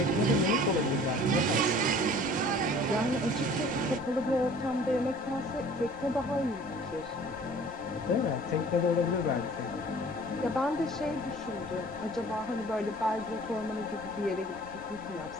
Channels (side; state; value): right; noise; rumble, 21 dB below the sound